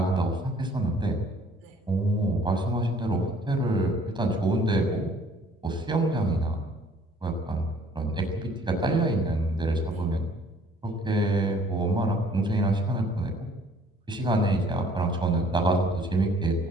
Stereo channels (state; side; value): normal; both; correlation 0.57